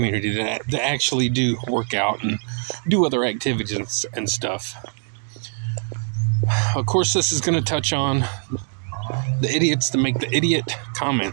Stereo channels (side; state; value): left; silent; 64 dB below the other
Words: that actually do work out and do other activities and stuff. Of course, this is going to touch on the idiots that make the idiot